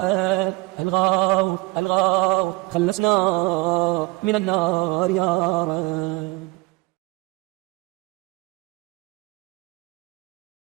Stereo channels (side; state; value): left; quieter; 24.3 dB